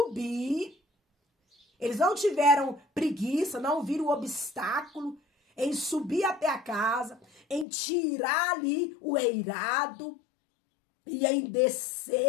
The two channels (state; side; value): drops out; right; at 7.7 s